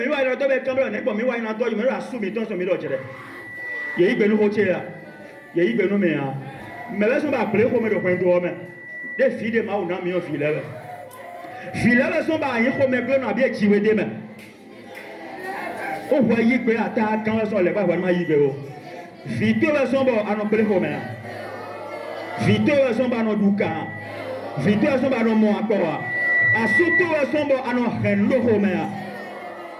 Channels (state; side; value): identical; both; correlation 1.00